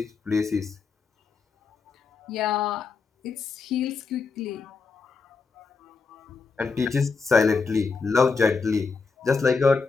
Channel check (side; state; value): right; quieter; 4.7 dB